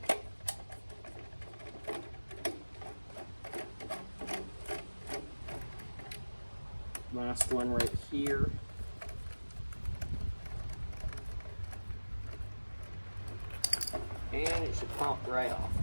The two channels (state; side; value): inverted; both; correlation -1.00